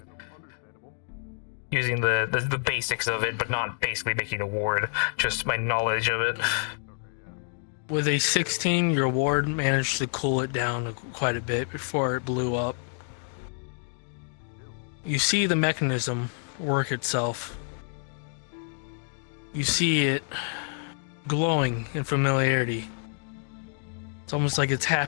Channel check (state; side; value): silent; right; 57 dB below the other